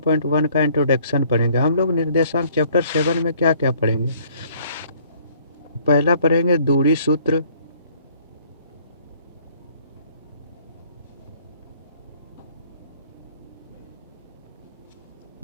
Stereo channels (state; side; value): inverted; both; correlation -0.59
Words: का इंट्रोडक्शन पढ़ेंगे। हम लोग निर्देशांक चैप्टर 7 में क्या क्या पढ़ेंगे। पहला पढ़ेंगे दूरी सूत्र,